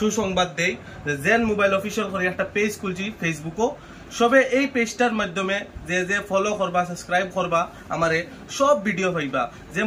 দেই যে জেন মোবাইল অফিশিয়াল করে একটা পেজ খুলছি ফেসবুকও সবে এই পেজটার মাধ্যমে যে ফলো করবা সাবস্ক্রাইব করবা আমারে সব ভিডিও পাইবা যে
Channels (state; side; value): identical; both; correlation 1.00